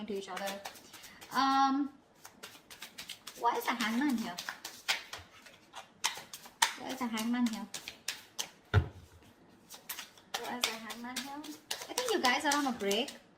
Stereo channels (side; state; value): both; identical; correlation 1.00